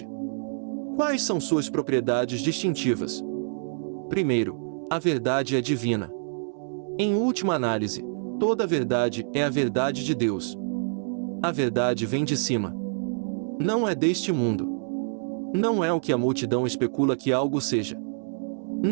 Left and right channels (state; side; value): silent; left; digital silence